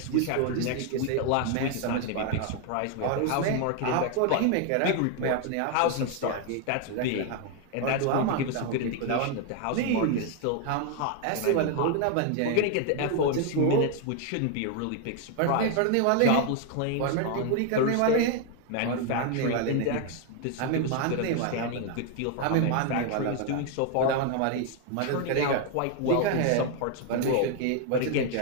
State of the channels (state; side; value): different; both; correlation 0.01